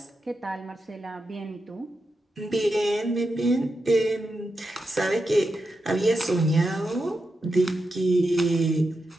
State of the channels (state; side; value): normal; both; correlation 0.88